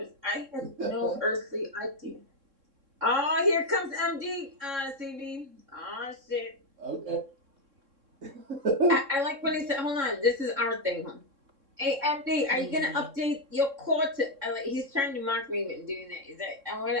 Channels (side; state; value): left; late; 3.7 ms